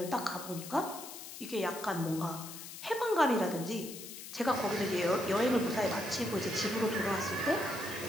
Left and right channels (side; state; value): left; noise; hiss, 11 dB below the sound